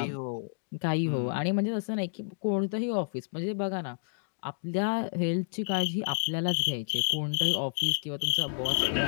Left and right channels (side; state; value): right; silent; digital silence